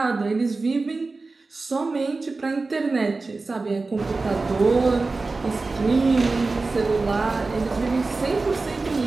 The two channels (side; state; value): left; quieter; 3.7 dB